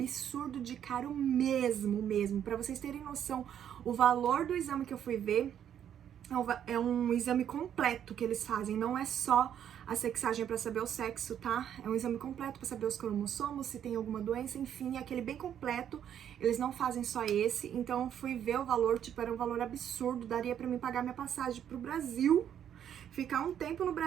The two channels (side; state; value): left; quieter; 9.6 dB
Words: de caro mesmo. Pra vocês terem noção, o valor do exame que eu fui ver É um exame completo que eles fazem, não é só a sexagem para saber o sexo, tá? É um exame completo para saber os cromossomos, se tem alguma doença, enfim, é aquele bem completo. Eles não fazem só esse, então fui ver o valor, tipo, era um valor absurdo, daria para mim pagar minha passagem pro Brasil, ficar um tempo no